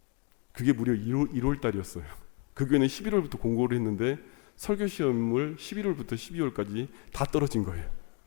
그게 무려 1월 달이었어요. 그 교회는 11월부터 공고를 했는데 설교 시험을 11월부터 12월까지 다 떨어진 거예요.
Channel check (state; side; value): quieter; right; 32.1 dB